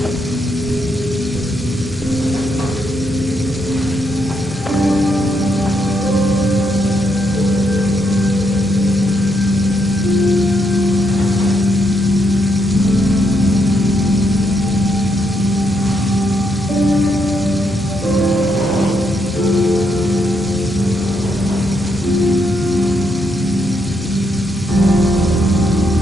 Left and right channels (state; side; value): normal; both; correlation 0.77